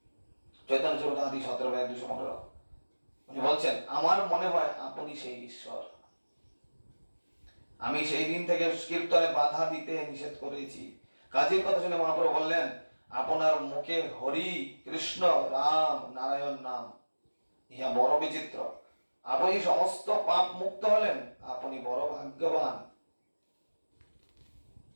চৈতন্য চরিতামৃত 17:215। উনি বলছেন, আমার মনে হয় আপনি সেই ঈশ্বর। আমি সেই দিন থেকে কীর্তনে বাধা দিতে নিষেধ করেছি। কাজীর কথা শুনে মহাপ্রভু বললেন, আপনার মুখে হরি, কৃষ্ণ, রাম, নারায়ণ নাম, ইহা বড় বিচিত্র। আপনি সমস্ত পাপ মুক্ত হলেন, আপনি বড় ভাগ্যবান।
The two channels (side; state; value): both; inverted; correlation -1.00